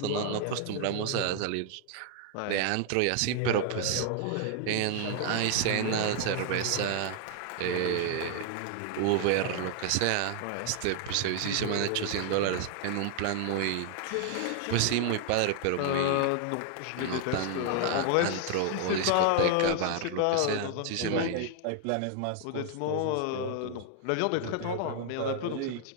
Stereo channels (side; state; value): both; different; correlation 0.00